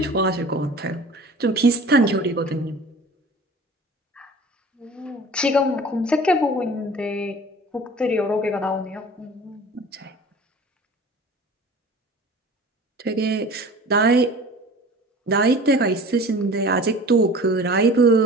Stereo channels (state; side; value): normal; both; correlation 0.42